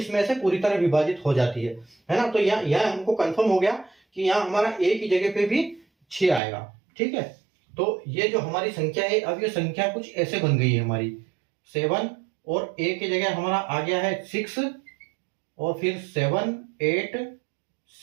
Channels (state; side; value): drops out; left; at 6.4 s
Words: में से पूरी तरह विभाजित हो जाती है ना। तो यह हमको कंफर्म हो गया कि यहाँ हमारा A की जगह पे भी 6 आएगा। ठीक है, तो ये जो हमारी संख्या है, अब ये संख्या कुछ ऐसे बन गई है हमारी 7, और A की जगह हमारा आ गया है 6, और फिर 7 8